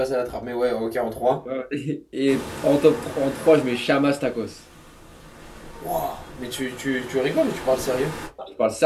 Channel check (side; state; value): both; identical; correlation 1.00